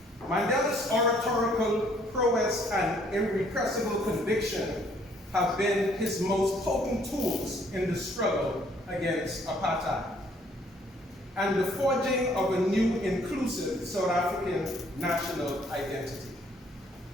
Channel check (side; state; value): both; normal; correlation 0.63